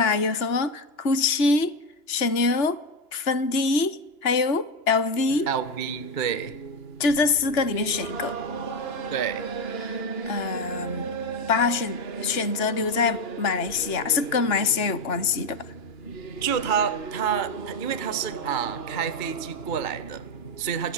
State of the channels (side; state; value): right; late; 2.9 ms